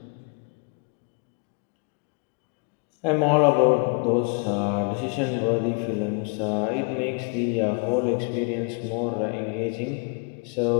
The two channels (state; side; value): quieter; right; 36.1 dB